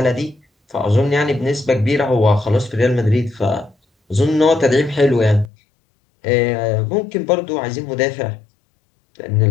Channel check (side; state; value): right; drops out; at 5.5 s